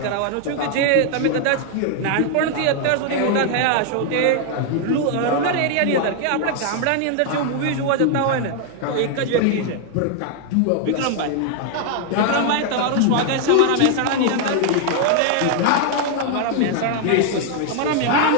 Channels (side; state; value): both; different; correlation 0.00